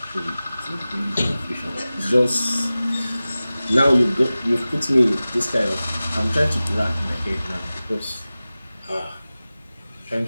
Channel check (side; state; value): both; inverted; correlation -0.96